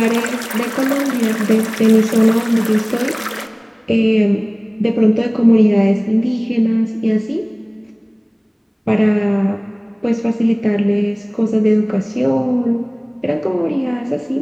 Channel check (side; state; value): both; identical; correlation 1.00